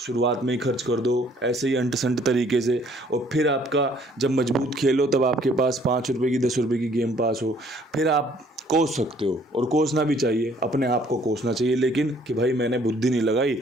में ही खर्च कर दो ऐसे ही अंट संट तरीके से, और फिर आपका जब मजबूत खेलो तब आपके पास 5 रुपये की 10 रुपये की गेम पास हो, फिर आप कोस सकते हो। और कोसना भी चाहिए, अपने आप को कोसना चाहिए, लेकिन कि भाई मैंने बुद्धि नहीं लगाई,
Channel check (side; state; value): both; normal; correlation 0.61